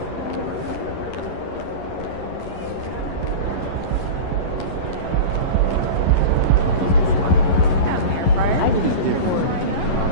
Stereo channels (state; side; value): late; right; 11 ms